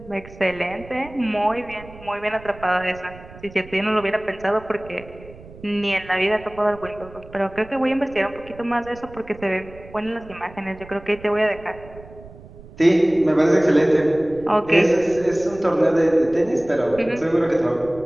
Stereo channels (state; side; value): noise; right; rumble, 19 dB below the sound